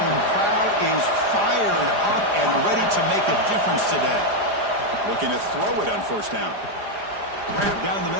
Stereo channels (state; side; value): late; left; 4.9 ms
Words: crowd is fired up and ready to make a difference today. Looking to throw it on first down. Grab down the